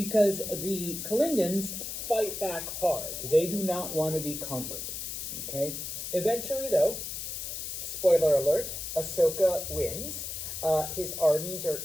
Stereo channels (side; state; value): left; noise; hiss, 6 dB below the sound